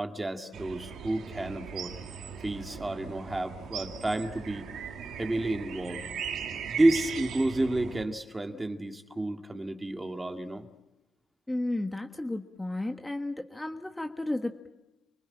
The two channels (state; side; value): normal; both; correlation 0.95